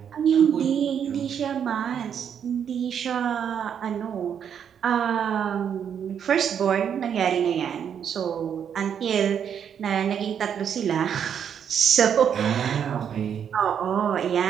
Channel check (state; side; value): quieter; left; 8.2 dB